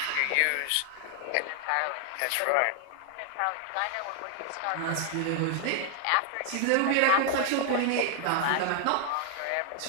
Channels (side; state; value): both; different; correlation 0.00